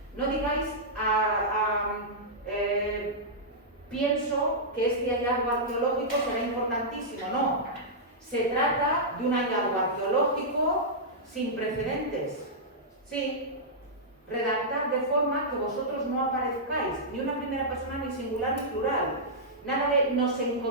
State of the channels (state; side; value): normal; both; correlation -0.11